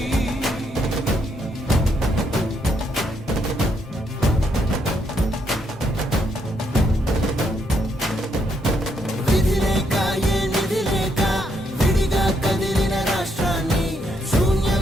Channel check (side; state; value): both; normal; correlation 0.76